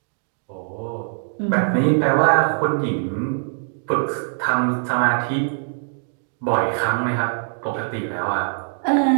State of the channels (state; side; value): silent; left; digital silence